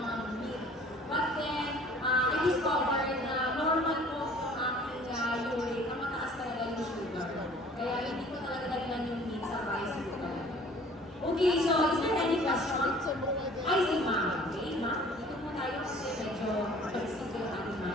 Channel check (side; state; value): both; normal; correlation 0.51